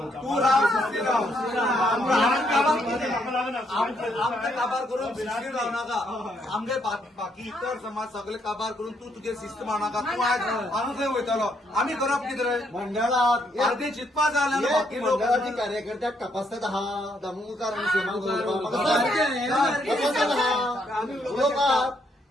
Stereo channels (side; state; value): both; normal; correlation 0.73